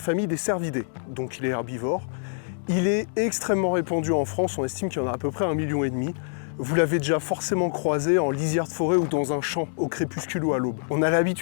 des cervidés, donc il est herbivore. Il est extrêmement répandu en France, on estime qu'il y en a à peu près 1,5 million. Vous l'avez déjà forcément croisé en lisière de forêt ou dans un champ, au crépuscule ou à l'aube. On a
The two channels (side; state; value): right; silent; digital silence